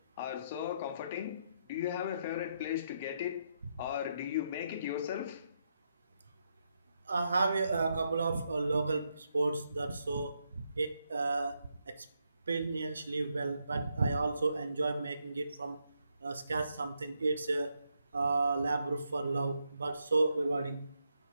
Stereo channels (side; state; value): both; inverted; correlation -0.80